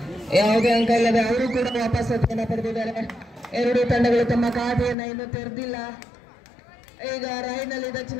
ಯಾವುದೇ ಅಂಕ ಇಲ್ಲದೆ ಅವರು ಕೂಡ ವಾಪಸಾತಿಯನ್ನು ಪಡೆದಿದ್ದಾರೆ. ಎರಡು ತಂಡಗಳು ತಮ್ಮ ಖಾತೆಯನ್ನು ಇನ್ನೂ ತೆರೆದಿಲ್ಲ. ಈಗ ರೈಡ್ ನಲ್ಲಿ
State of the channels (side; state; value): right; drops out; at 5.0 s